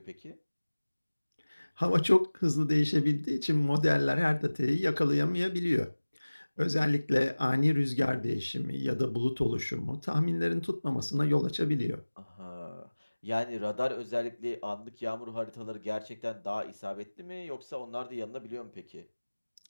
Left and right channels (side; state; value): both; inverted; correlation -1.00